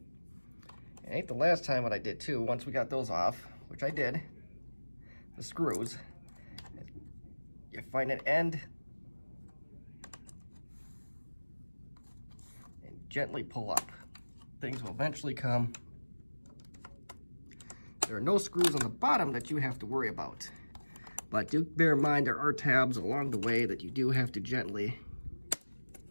It ain't the last time what I did too. Once we got those off, which I did, the screws, you find an end and gently pull up. Things will eventually come. There are no screws on the bottom that you have to worry about. But do bear in mind there are tabs along the way that you do have to gently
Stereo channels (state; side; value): inverted; both; correlation -1.00